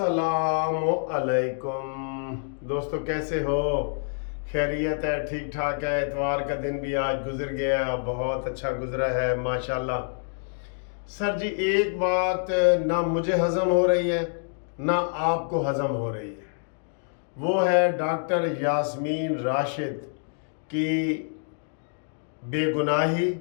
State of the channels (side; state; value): right; silent; digital silence